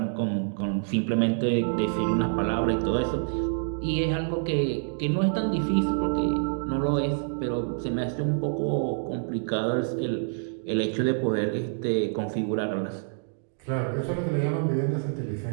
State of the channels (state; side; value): silent; left; digital silence